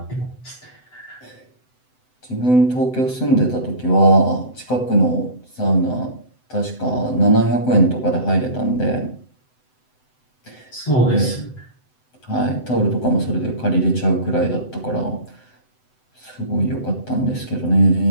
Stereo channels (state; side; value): late; right; 7.9 ms